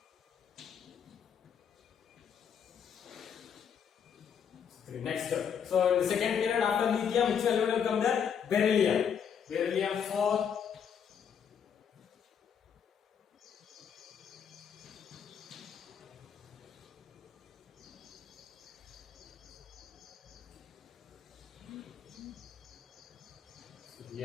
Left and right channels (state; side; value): quieter; right; 7.6 dB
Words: 3. Next. So in the second period after lithium, which element will come there? Beryllium. Beryllium 4. So